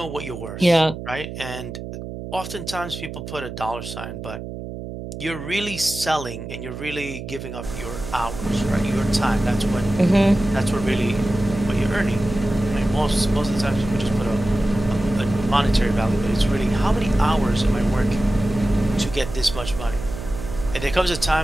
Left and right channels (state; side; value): noise; right; hum, 9 dB below the sound